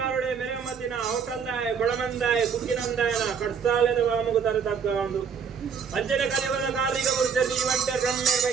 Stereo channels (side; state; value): left; quieter; 6.6 dB